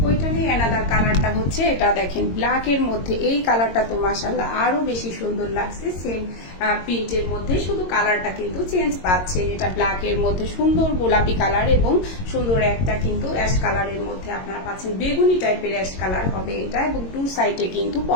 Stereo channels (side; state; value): right; late; 22 ms